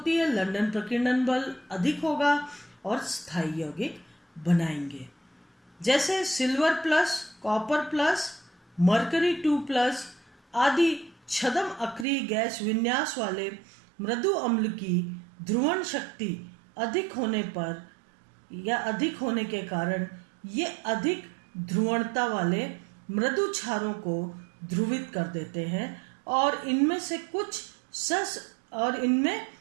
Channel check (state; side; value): drops out; left; at 12.1 s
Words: है, लंदन प्रकीर्णन बल अधिक होगा और स्थायी यौगिक बनाएंगे। जैसे silver plus, copper plus, mercury 2+ आदि छद्म अक्रिय गैस विन्यास वाले मृदु अम्ल की ध्रुवण शक्ति अधिक होने पर या अधिक होने के कारण ये अधिक ध्रुवणता वाले मृदु क्षारों को ध्रुवित कर देते हैं और इनमें से कुछ और इनमें